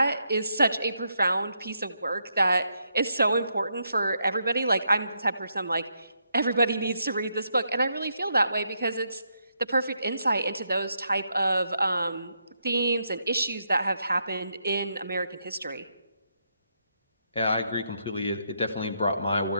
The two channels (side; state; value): both; inverted; correlation -0.79